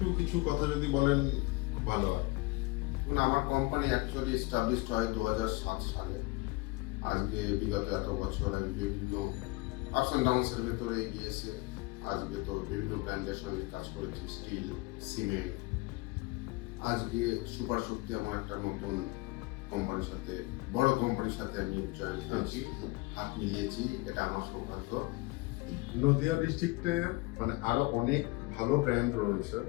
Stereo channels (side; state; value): right; quieter; 22.8 dB